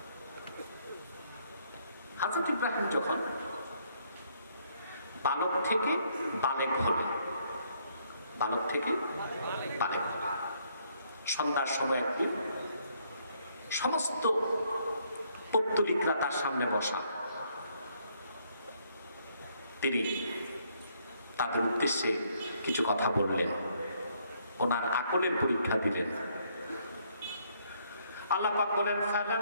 হযরত ইব্রাহিম যখন বালক থেকে বালেগ হলেন, বালক থেকে বালেগ হলেন, সন্ধ্যার সময় একদিন সমস্ত পৌত্তলিকরা তার সামনে বসা। তিনি তাদের উদ্দেশ্যে কিছু কথা বললেন, ওনার আকলের পরীক্ষা দিলেন। আল্লাহ পাক বলেন,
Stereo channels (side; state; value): both; inverted; correlation -0.69